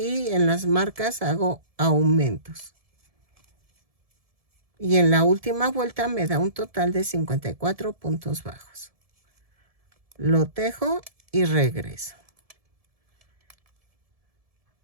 en las marcas hago aumentos. Y en la última vuelta me da un total de 54 puntos bajos. Lo tejo y regreso.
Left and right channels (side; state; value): left; late; 1.7 ms